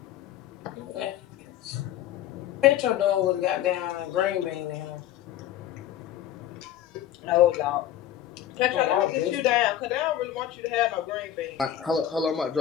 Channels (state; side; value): quieter; right; 11.5 dB